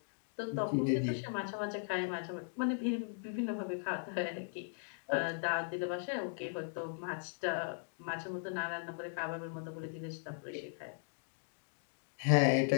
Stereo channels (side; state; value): right; silent; digital silence